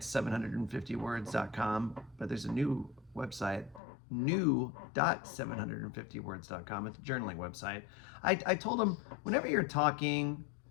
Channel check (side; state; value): right; drops out; at 3.8 s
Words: 750words.com, but there's a new website, new.750words.com. It's a journaling website. I told them, whenever you're talking,